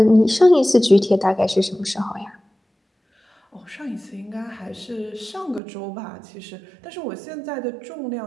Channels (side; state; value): left; drops out; at 5.6 s